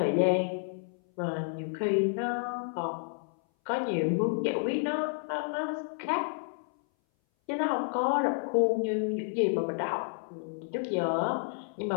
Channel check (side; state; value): right; silent; 57 dB below the other